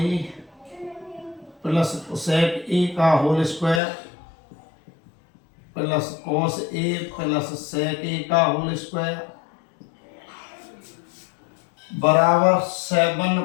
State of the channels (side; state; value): right; drops out; at 3.8 s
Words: plus cosec A का whole square plus cos A plus sec A का होल स्क्वायर बराबर 7